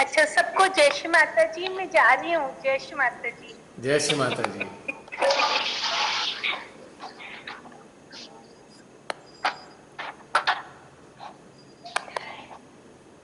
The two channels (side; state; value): both; identical; correlation 1.00